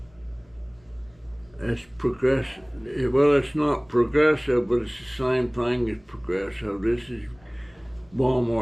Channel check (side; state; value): left; noise; rumble, 30 dB below the sound